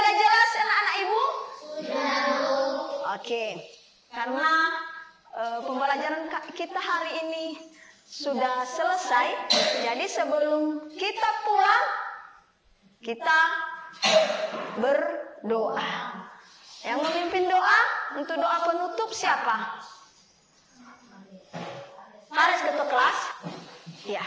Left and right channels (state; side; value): identical; both; correlation 1.00